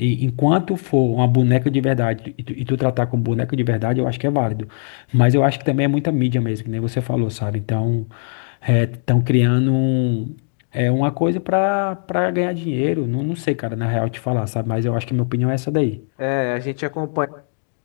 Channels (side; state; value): right; silent; digital silence